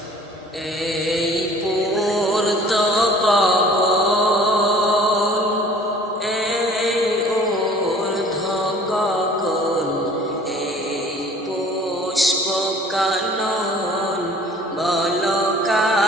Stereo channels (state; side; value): normal; both; correlation 0.50